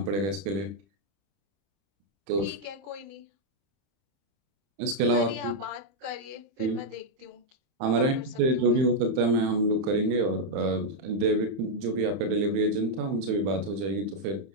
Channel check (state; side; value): late; left; 31 ms